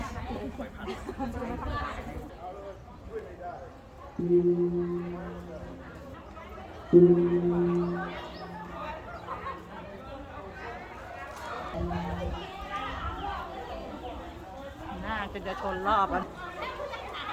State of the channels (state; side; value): identical; both; correlation 1.00